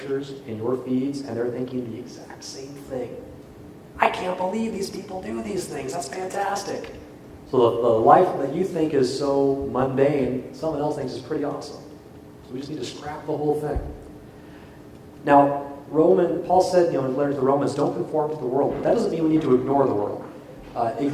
and your feeds, and they're thinking the exact same thing. I can't believe these people do these things. That's fantastic. So the life that you think is so mundane, someone else thinks is pretty awesome. So we just need to scrap the whole thing. Now, Paul said, in his letter to the Romans, don't conform to the world. But that doesn't mean we need to ignore the world.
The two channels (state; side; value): identical; both; correlation 1.00